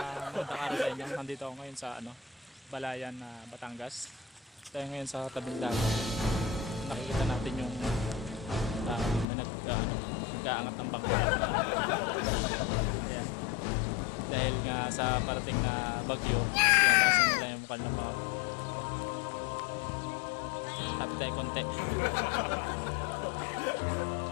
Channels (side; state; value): right; drops out; at 9.2 s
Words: araw sa inyo. Nandito ako ngayon sa Balayan na Batangas. Tayo ngayon sa tabing dagat. Nakikita natin yung may nag-aangat ng bangka. Ayan. Dahil nga sa parating na bagyo, tinatasan nila yung mukha ng mga tapit tayo konti.